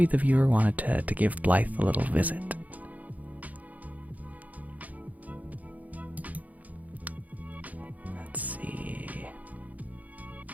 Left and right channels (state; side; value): late; left; 0.076 ms